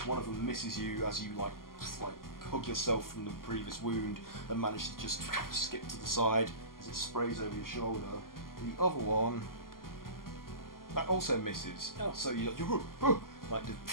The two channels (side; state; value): right; late; 0.92 ms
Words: One of them misses you as you like hug yourself from the previous wound and manage to just skip to the side as it sprays over your shoulder. The other one, that also misses. Oh. So you like